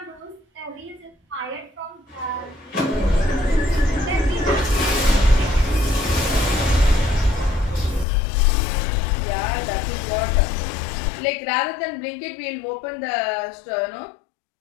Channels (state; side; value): drops out; right; at 8.1 s